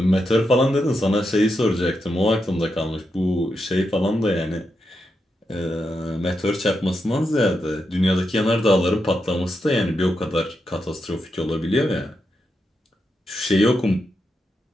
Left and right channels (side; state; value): both; normal; correlation 0.85